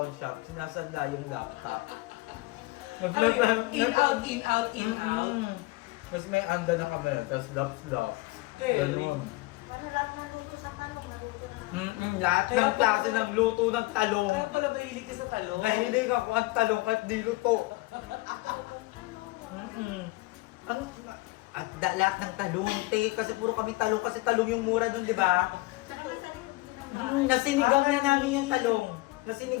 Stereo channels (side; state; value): right; quieter; 21.4 dB